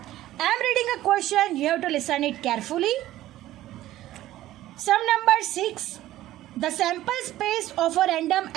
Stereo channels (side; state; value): left; quieter; 14.7 dB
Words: I am reading a question, you have to listen it carefully. Sum number 6. The sample space of a random